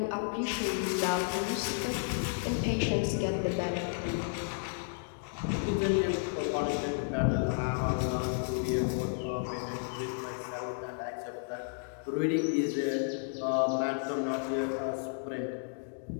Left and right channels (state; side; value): silent; right; digital silence